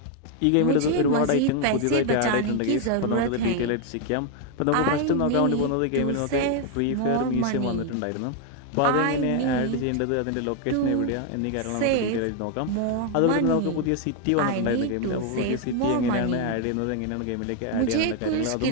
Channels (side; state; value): both; different; correlation 0.01